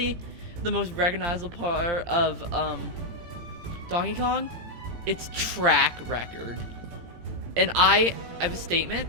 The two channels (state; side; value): late; left; 17 ms